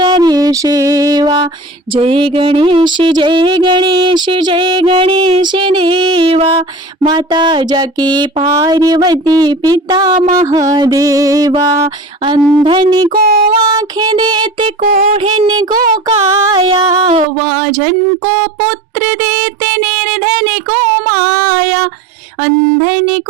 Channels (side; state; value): left; drops out; at 17.2 s